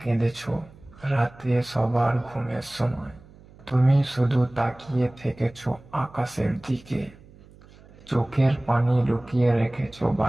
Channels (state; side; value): noise; right; hum, 24 dB below the sound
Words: কেঁদেছো রাতে সবার ঘুমের সময়। তুমি শুধু তাকিয়ে থেকেছো আকাশের দিকে, চোখের পানি লুকিয়ে রেখেছো